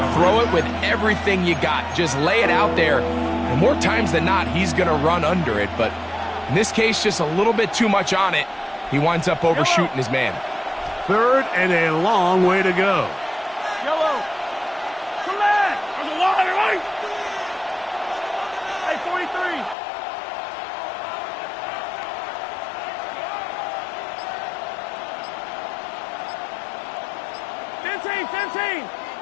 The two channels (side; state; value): right; drops out; at 19.8 s